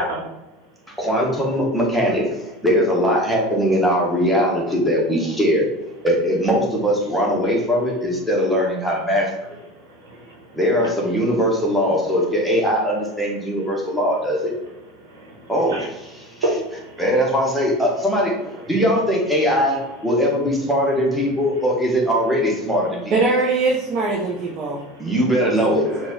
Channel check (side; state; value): both; normal; correlation 0.35